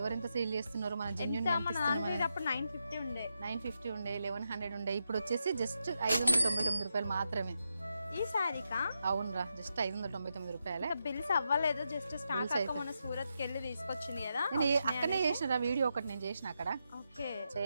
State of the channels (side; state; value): both; inverted; correlation -0.85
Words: సేల్ చేస్తున్నారు, మన జెన్యూన్ మన దాంట్లో అప్పుడు 950 ఉండే 950 ఉండే 1100 ఉండే, ఇప్పుడు వచ్చేసి జస్ట్ 599 రూపాయలు మాత్రమే ఈ శారీకా. అవునరా, జస్ట్ 599 రూపాయలే. బిల్స్ అవ్వలేదు, జస్ట్ స్టాక్ అక్క మన సూరత్ కి వెళ్ళి తీసుకొచ్చింది కదా. నేను అక్కడనే చేసిన వీడియో ఒకటి నేను చేసిన అక్కడ. ఓకే